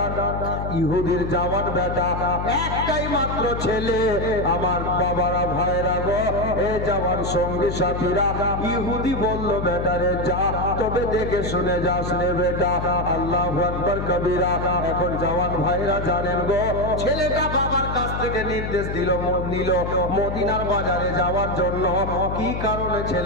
ইহুদির জওয়ান বেটা, একটাই মাত্র ছেলে। আমার বাবারা ভাইরা গো, এ জওয়ান সঙ্গী সাথীরা, ইহুদি বলল, বেটারে যা, তবে দেখে শুনে যাস রে বেটা। আল্লাহু আকবার কবিরা। এখন জওয়ান ভাইরা জানেন গো, ছেলেটা বাবার কাছ থেকে নির্দেশ নিল মদিনার বাজারে যাওয়ার জন্য। কি কারণে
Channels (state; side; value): noise; left; hum, 5 dB below the sound